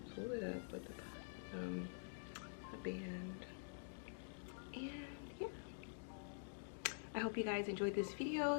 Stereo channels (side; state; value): right; silent; digital silence